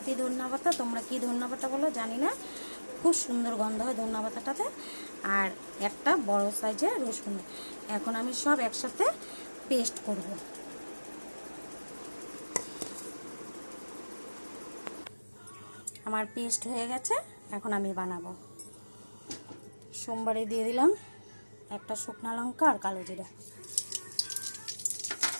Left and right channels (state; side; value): inverted; both; correlation -1.00